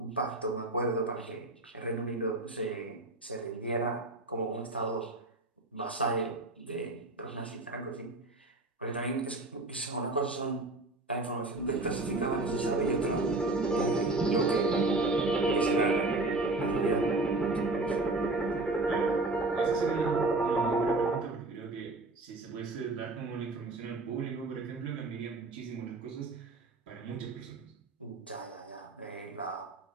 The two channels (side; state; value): left; quieter; 3.0 dB